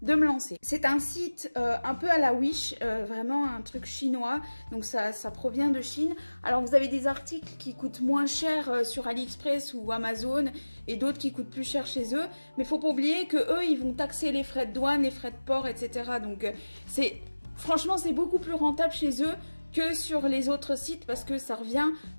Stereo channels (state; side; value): inverted; both; correlation -1.00